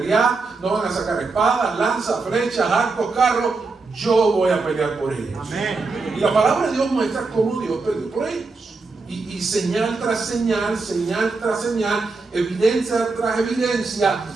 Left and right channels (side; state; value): left; quieter; 3.9 dB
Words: no van a sacar espadas, lanzas, flechas, arcos, carros. Yo voy a pelear por ellos. Amén. Y la palabra de Dios muestra cómo Dios peleó por ellos. Y señal tras señal, señal tras señal, evidencia tras evidencia,